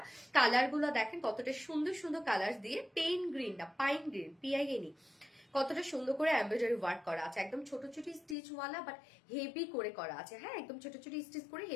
কালার গুলো দেখেন কতটা সুন্দর সুন্দর কালার দিয়ে, পেইন গ্রিন না, পাইন গ্রিন, PIN। কতটা সুন্দর করে এমব্রয়ডারি ওয়ার্ক করা আছে, একদম ছোট ছোট স্টিচ ওয়ালা, বাট হেভি করে করা আছে। হ্যাঁ, একদম ছোট ছোট স্টিচ করে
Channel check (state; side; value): drops out; right; at 8.3 s